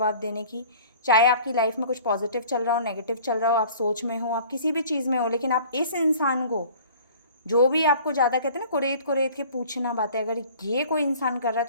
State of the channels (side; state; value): both; inverted; correlation -0.48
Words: देने की। चाहे आपकी लाइफ में कुछ पॉजिटिव चल रहा हो, नेगेटिव चल रहा हो, आप सोच में हो, आप किसी भी चीज़ में हो, लेकिन आप इस इंसान को जो भी आपको ज़्यादा कहते हैं ना कुरेद कुरेद के पूछना बातें, अगर ये कोई इंसान कर रहा है